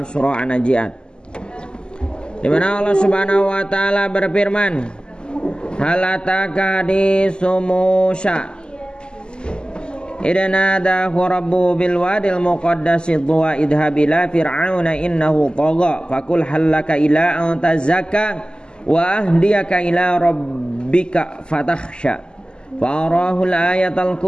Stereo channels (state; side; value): late; right; 0.048 ms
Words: surah An-Najiat. Di mana Allah Subhanahu wa taala berfirman, hal ataka haditsu Musa idna nadahu rabbu bil wadil muqaddasi tuwa idhab ila fir'auna innahu tagha faqul halaka ila an tazakka wa ahdiyaka ila rabbika fatakhsha farahu al-ayatal